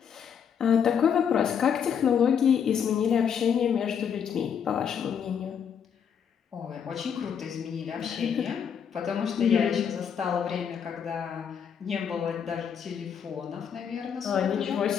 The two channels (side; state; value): right; quieter; 7.6 dB